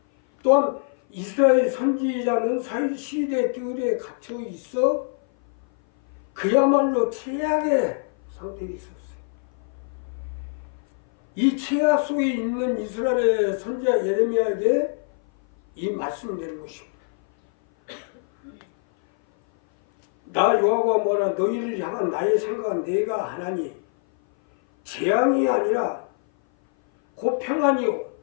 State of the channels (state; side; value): silent; right; 57 dB below the other